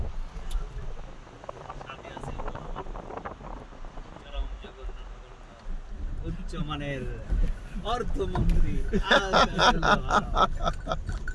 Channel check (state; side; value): identical; both; correlation 1.00